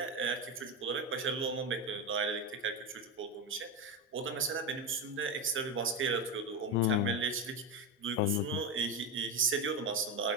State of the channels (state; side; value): normal; both; correlation 0.15